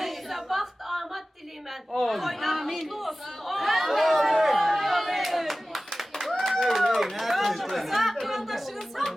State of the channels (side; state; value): both; normal; correlation 0.96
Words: baxt, amat dileyim ben. Toylar mutlu olsun. Yoldaşınız sağ